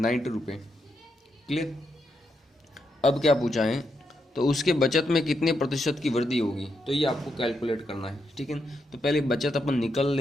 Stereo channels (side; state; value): both; normal; correlation 0.82